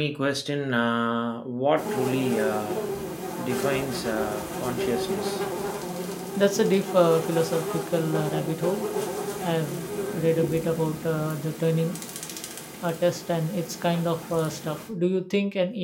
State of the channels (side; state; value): both; identical; correlation 1.00